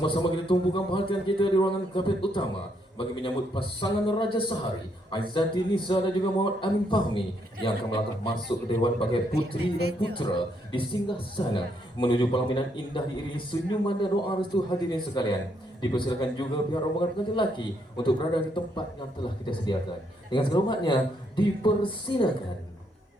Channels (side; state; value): both; normal; correlation 0.74